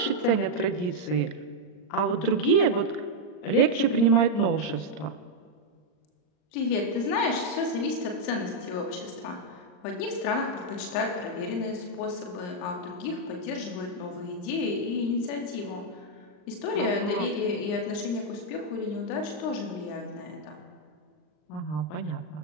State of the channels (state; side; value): late; right; 39 ms